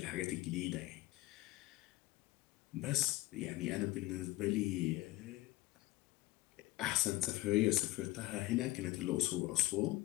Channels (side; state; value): right; quieter; 18.0 dB